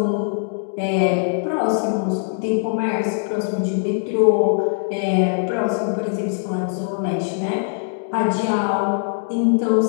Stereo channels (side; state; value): right; silent; digital silence